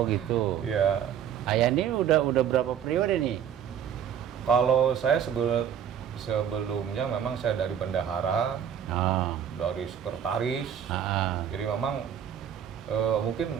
gitu. Ya. Ayandi udah berapa periode nih? Kalau saya sebelumnya memang saya dari bendahara, dari sekretaris. Jadi memang mungkin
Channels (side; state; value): left; quieter; 8.9 dB